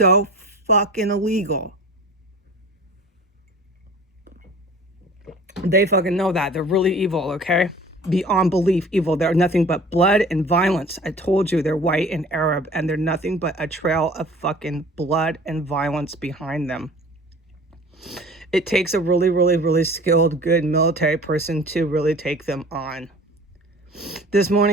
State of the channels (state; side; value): normal; both; correlation 0.44